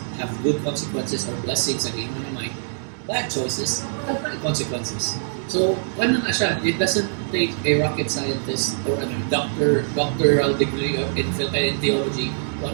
have good consequences or blessings again mo na Mike. Bad choices have bad consequences. So, ano na siya? It doesn't take a rocket scientist or a doctoral degree in theology to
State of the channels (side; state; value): left; silent; digital silence